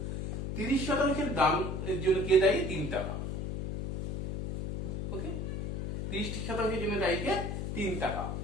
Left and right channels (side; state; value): left; noise; hum, 3 dB below the sound